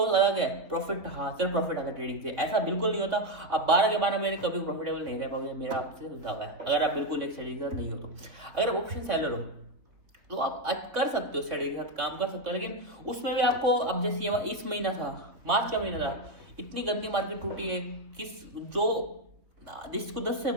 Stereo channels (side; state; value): left; late; 3.5 ms